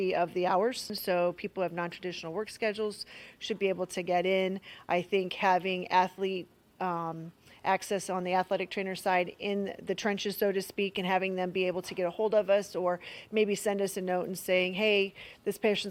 of the hours. So people who have non-traditional work schedules should be able to get in. I think having athlete access on the athletic trainer side in the trenches, so to speak, and having them be able to get a hold of us or maybe send us a note and saying, hey, this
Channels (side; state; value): both; identical; correlation 1.00